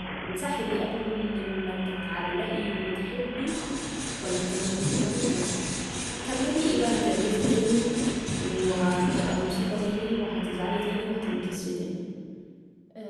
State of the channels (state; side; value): identical; both; correlation 1.00